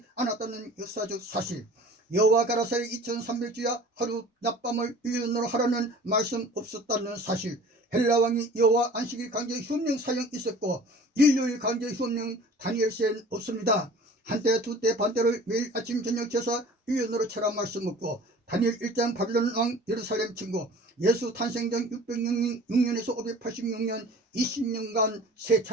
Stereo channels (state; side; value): normal; both; correlation 0.45